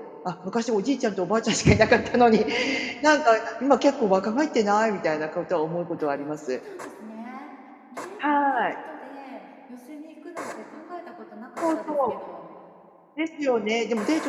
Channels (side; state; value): both; identical; correlation 1.00